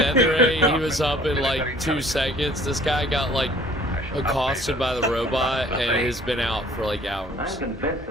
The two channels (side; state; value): both; normal; correlation 0.54